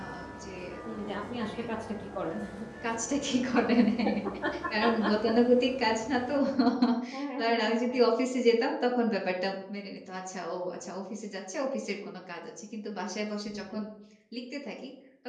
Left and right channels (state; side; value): identical; both; correlation 1.00